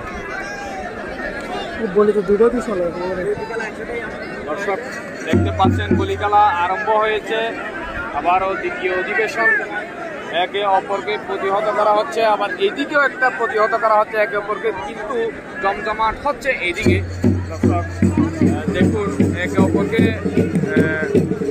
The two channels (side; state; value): both; identical; correlation 1.00